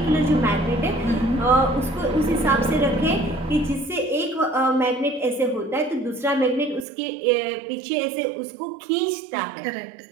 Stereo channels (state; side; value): drops out; left; at 6.9 s